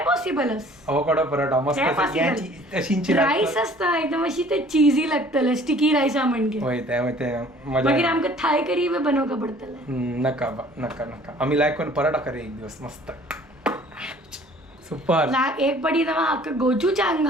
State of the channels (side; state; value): both; normal; correlation 0.53